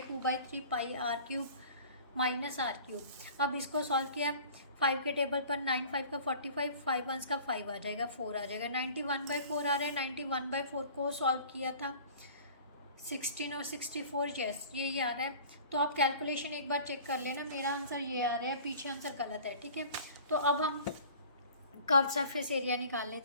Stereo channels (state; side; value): inverted; both; correlation -0.45